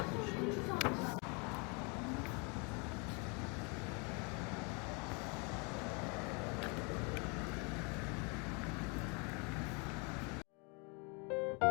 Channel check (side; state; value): right; quieter; 32.6 dB